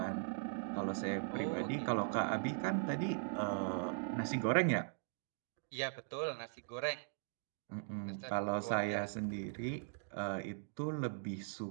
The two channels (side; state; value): left; silent; digital silence